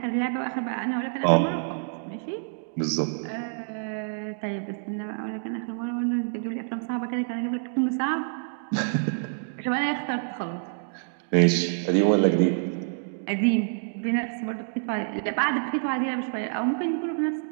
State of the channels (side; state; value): left; silent; digital silence